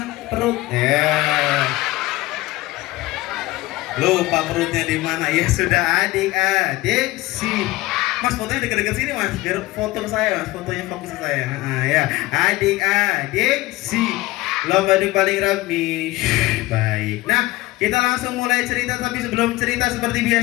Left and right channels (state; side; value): quieter; right; 19.1 dB